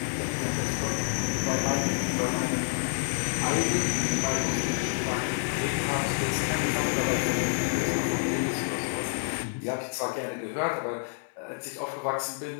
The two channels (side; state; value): right; silent; 59 dB below the other